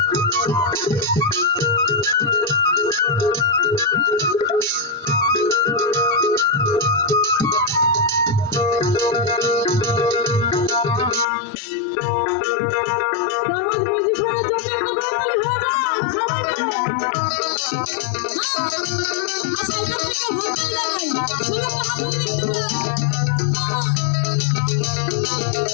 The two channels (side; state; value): right; drops out; at 11.2 s